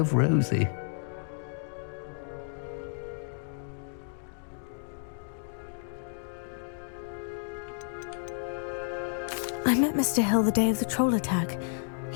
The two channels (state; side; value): silent; right; 57 dB below the other